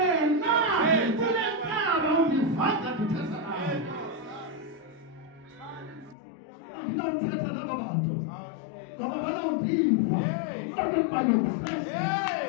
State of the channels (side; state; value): right; drops out; at 6.2 s